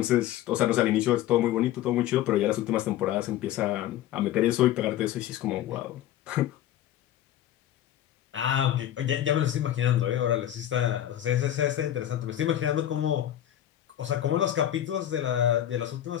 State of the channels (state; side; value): quieter; right; 12.1 dB